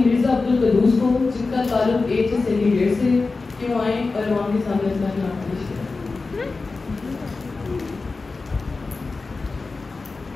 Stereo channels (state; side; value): quieter; right; 3.9 dB